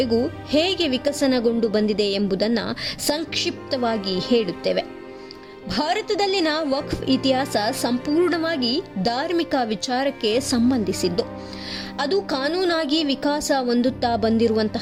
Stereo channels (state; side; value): identical; both; correlation 1.00